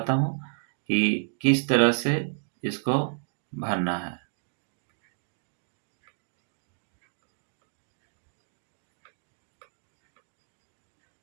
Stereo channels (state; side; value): silent; left; digital silence